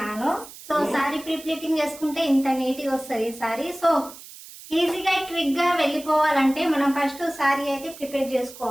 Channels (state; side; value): noise; right; hiss, 17 dB below the sound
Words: సో సారీ ప్రీప్లేటింగ్ చేసుకుంటే ఇంత నీట్గా వస్తుంది సారీ. సో ఈజీగా క్విక్ గా వెళ్ళిపోవాలంటే మనం ఫస్ట్ సారీ అయితే ప్రిపేర్